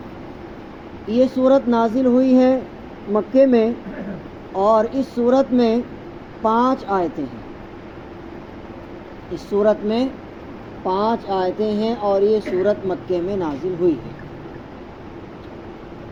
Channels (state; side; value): identical; both; correlation 1.00